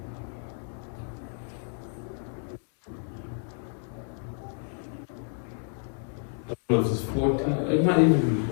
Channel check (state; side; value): silent; right; digital silence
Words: I don't know if it's 14, it might even be